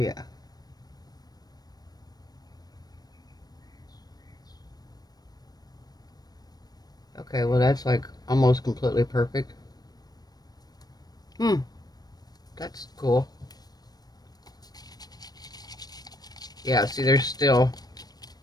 Okay, well that's like almost completely perfect. That's cool. Yeah, see there's still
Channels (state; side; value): late; right; 0.19 ms